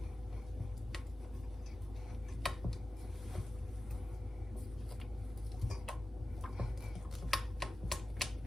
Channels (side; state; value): both; normal; correlation 0.95